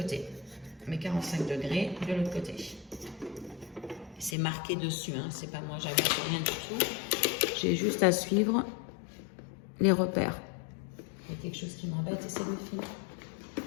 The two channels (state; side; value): drops out; right; at 4.4 s